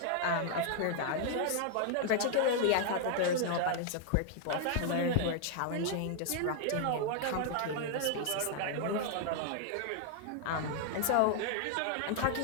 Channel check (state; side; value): different; both; correlation 0.00